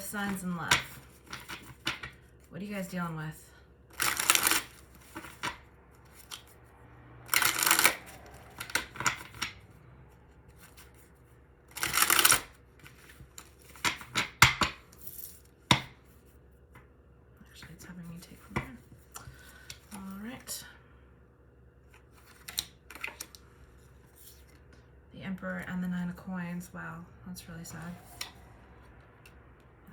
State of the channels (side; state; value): both; identical; correlation 1.00